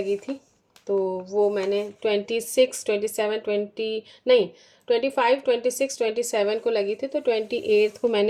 थी, तो वो मैंने 25, 26, 27 को लगी थी, तो 28 को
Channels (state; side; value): identical; both; correlation 1.00